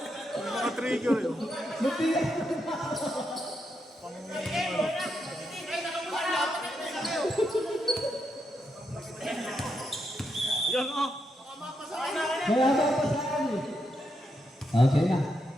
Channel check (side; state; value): both; normal; correlation 0.82